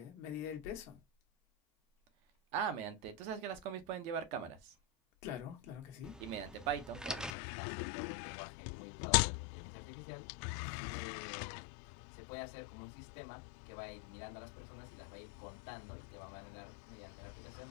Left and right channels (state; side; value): drops out; right; at 7.3 s